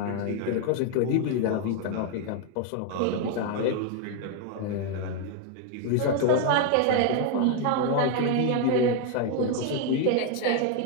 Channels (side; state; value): both; different; correlation 0.01